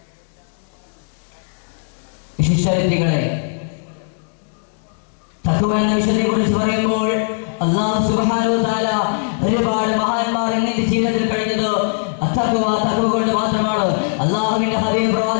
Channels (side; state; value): right; silent; digital silence